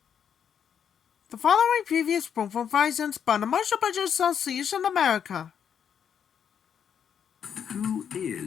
The following previous performance by the Marshall Budget Association America. Who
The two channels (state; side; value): quieter; right; 8.0 dB